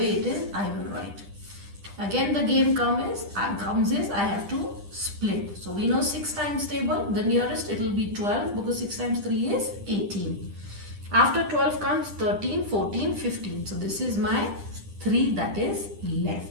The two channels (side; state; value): left; late; 10 ms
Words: it is, I will write. Again, the game comes is I have to split. So we know 6 times table, the nearest it will be 12 because 6 times 3 is 18. After 12 comes 13, 14, 15. So this is my 3 that is